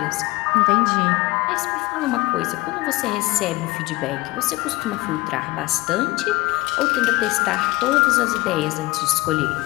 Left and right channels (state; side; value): quieter; right; 21.1 dB